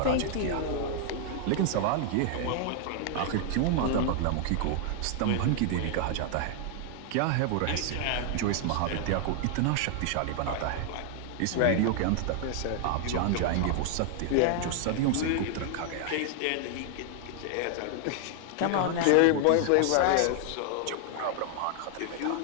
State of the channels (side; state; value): both; different; correlation 0.00